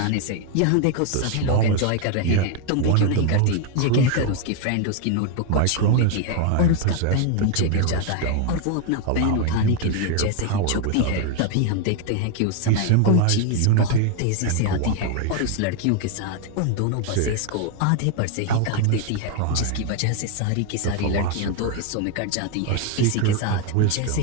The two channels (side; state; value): both; different; correlation 0.01